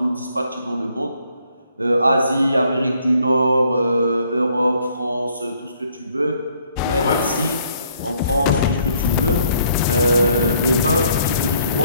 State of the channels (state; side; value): inverted; both; correlation -0.66